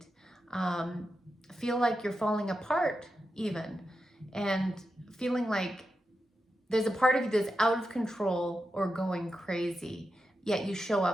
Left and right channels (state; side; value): normal; both; correlation 0.89